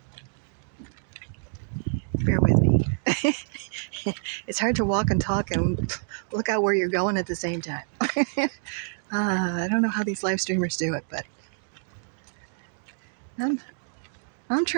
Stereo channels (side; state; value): left; silent; digital silence